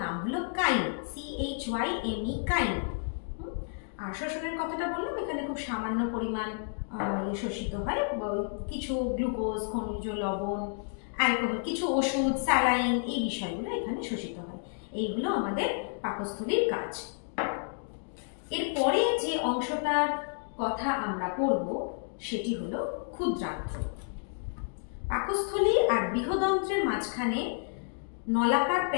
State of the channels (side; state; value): right; silent; 57 dB below the other